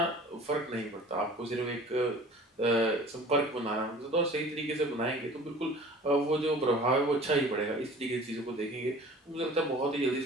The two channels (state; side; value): normal; both; correlation 0.45